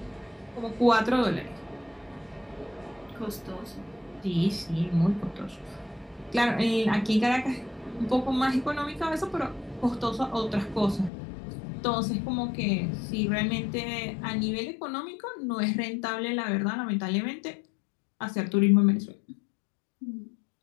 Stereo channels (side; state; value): right; drops out; at 11.1 s